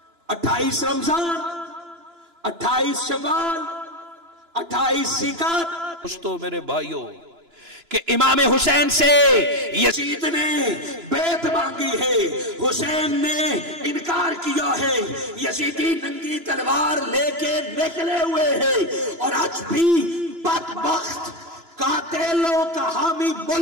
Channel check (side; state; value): left; late; 2.9 ms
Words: 28 رمضان، 28 شوال، 28 ذیقعدہ۔ دوستو میرے بھائیوں کہ امام حسین سے یزید نے بیعت مانگی ہے، حسین نے انکار کیا ہے، یزیدی ننگی تلوار لے کے نکلے ہوئے ہیں، اور آج بھی بدبخت قاتلوں کا حامی